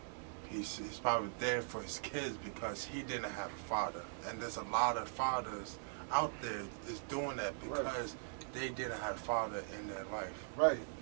He's probably there for his kids because he didn't have a father. And there's a lot of fathers out there is doing that because they didn't have a father in their life. Right.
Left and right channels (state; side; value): silent; left; digital silence